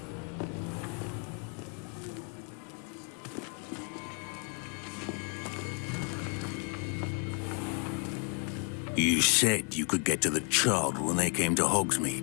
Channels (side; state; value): right; quieter; 36.9 dB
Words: You said you could get to the child when they came to